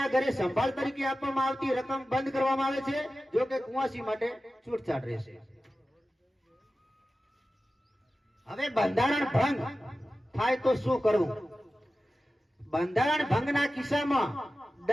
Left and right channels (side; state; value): both; normal; correlation 0.94